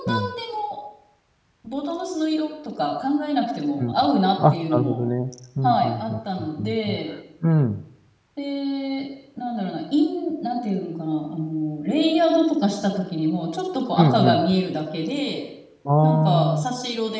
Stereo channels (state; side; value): identical; both; correlation 1.00